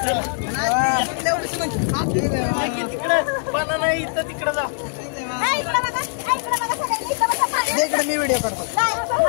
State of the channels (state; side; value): silent; right; digital silence